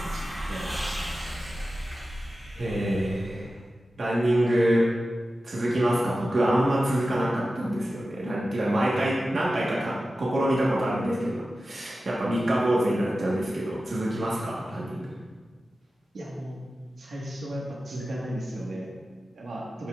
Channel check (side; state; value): both; normal; correlation 0.94